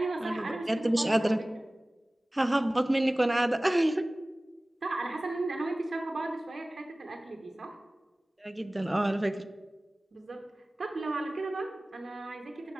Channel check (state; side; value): normal; both; correlation 0.98